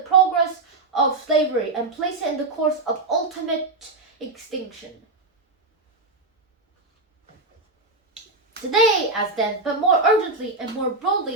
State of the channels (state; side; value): quieter; left; 3.3 dB